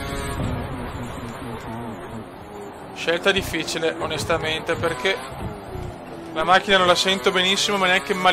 Scelta difficile, onestamente, perché la macchina non la sento benissimo, ma neanche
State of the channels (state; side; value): identical; both; correlation 1.00